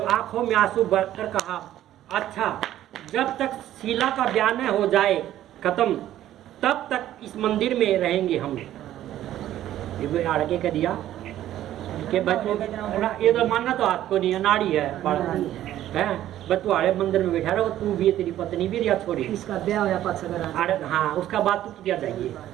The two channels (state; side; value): quieter; left; 12.8 dB